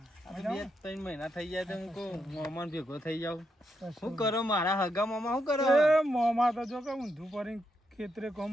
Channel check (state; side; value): normal; both; correlation 0.81